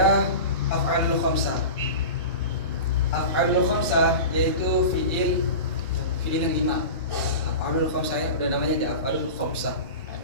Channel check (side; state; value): both; inverted; correlation -0.30